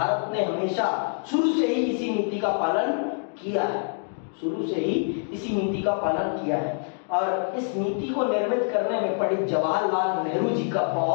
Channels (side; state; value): right; silent; 59 dB below the other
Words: ने हमेशा शुरू से ही इसी नीति का पालन किया है, शुरू से ही इसी नीति का पालन किया है। और इस नीति को निर्मित करने में पंडित जवाहरलाल नेहरू जी का